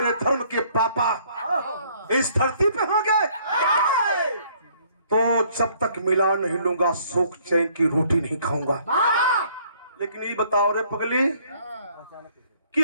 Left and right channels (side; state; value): both; inverted; correlation -0.62